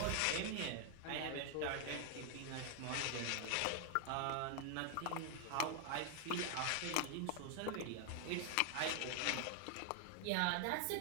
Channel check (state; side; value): different; both; correlation 0.00